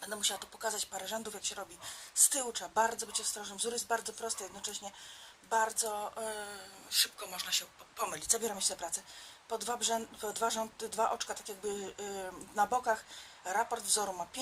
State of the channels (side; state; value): both; identical; correlation 1.00